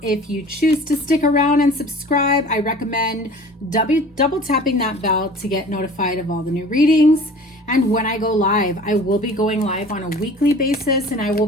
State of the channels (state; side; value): normal; both; correlation 0.44